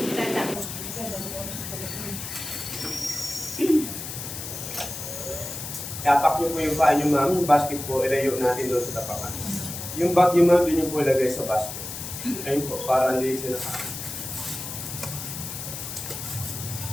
Tapak niyo po yung paa niyo, ma'am. Yung basket po, ilayo natin doon sa tapakan. Yung bag niyo, ma'am, doon niyo po ilagay sa basket. Ayun po, para hindi sila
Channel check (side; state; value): left; noise; hiss, 8 dB below the sound